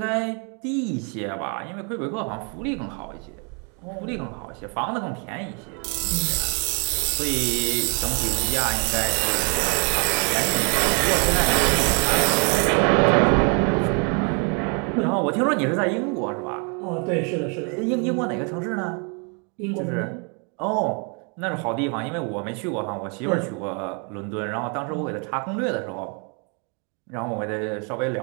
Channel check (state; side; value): quieter; left; 36.4 dB